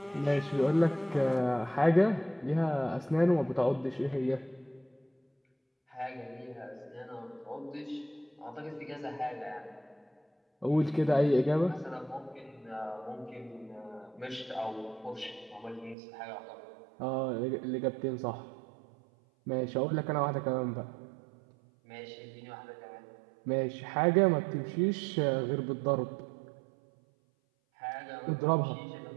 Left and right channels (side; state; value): left; drops out; at 16.0 s